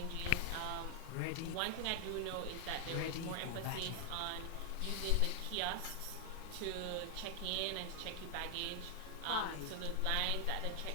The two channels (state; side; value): different; both; correlation 0.00